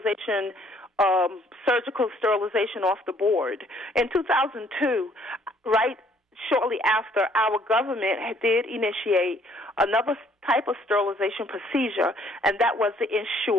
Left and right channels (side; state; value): both; normal; correlation 0.63